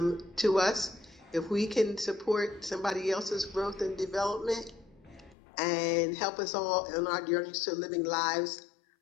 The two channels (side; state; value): right; drops out; at 5.4 s